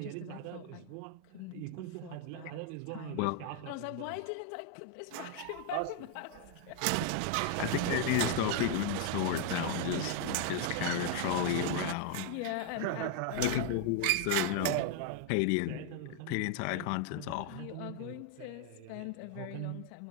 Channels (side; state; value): both; different; correlation 0.00